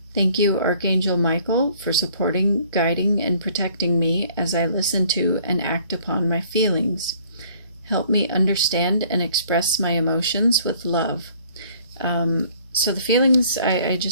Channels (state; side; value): inverted; both; correlation -0.57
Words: Thank you, Archangel Michael, for supporting, guiding, and protecting me as I listen to and act upon my feelings. Help me understand and express my emotions with love. So the feelings, I